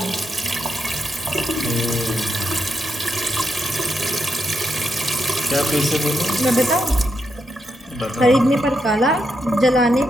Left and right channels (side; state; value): both; normal; correlation 0.82